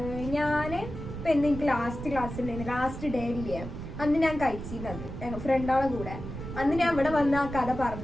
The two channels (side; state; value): right; noise; rumble, 9 dB below the sound